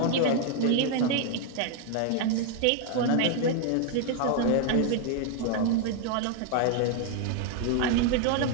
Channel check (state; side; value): different; both; correlation 0.00